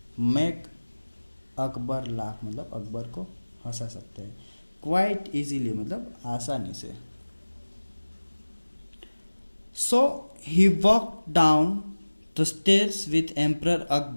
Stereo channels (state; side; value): inverted; both; correlation -1.00